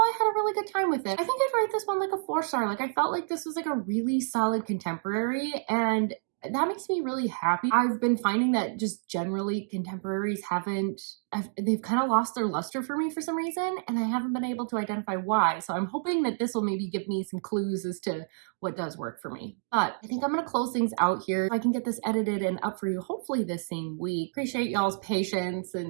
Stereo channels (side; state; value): left; silent; digital silence